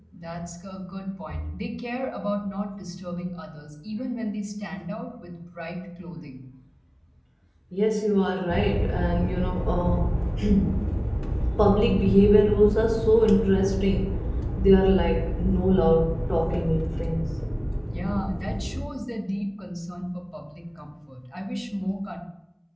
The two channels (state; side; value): identical; both; correlation 1.00